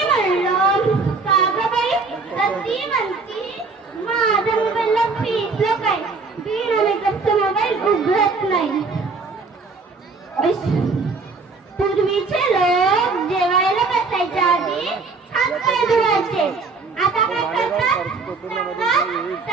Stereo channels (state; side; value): quieter; left; 4.2 dB